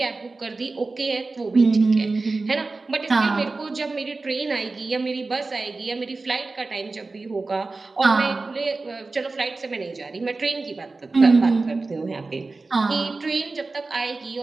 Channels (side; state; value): left; quieter; 3.6 dB